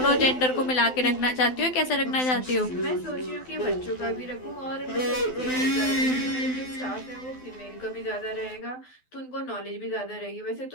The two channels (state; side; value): late; right; 12 ms